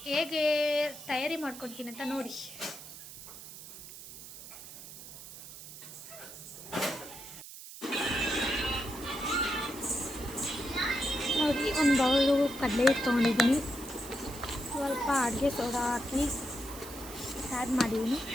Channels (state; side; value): noise; right; hiss, 14 dB below the sound